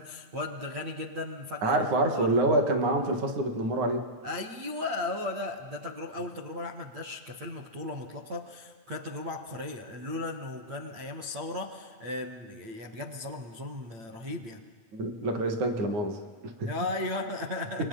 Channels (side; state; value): left; late; 8.8 ms